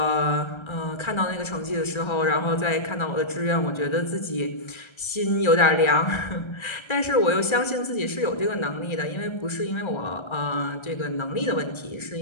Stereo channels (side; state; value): right; late; 1.3 ms